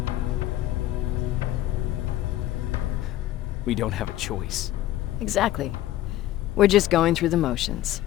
We don't have a choice. Exactly. We're just going through the motions.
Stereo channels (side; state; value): right; quieter; 14.2 dB